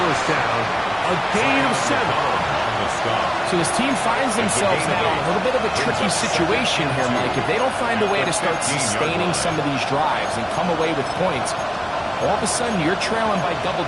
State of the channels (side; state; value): both; identical; correlation 1.00